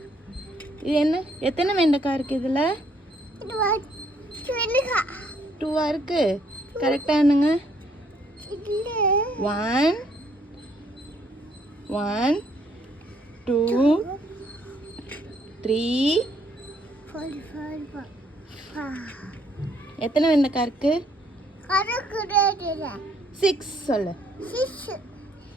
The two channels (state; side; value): normal; both; correlation 0.68